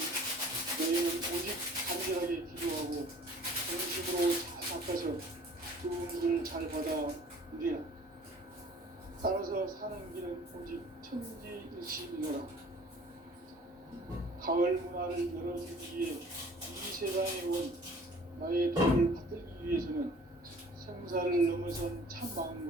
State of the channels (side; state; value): both; normal; correlation 0.50